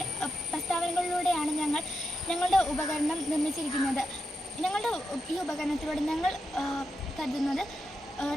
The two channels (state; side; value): normal; both; correlation 0.86